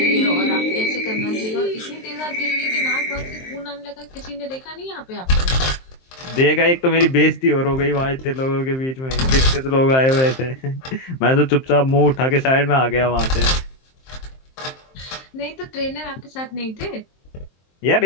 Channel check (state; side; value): late; right; 23 ms